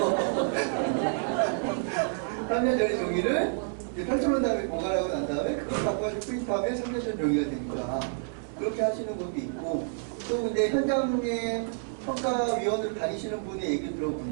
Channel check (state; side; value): silent; left; digital silence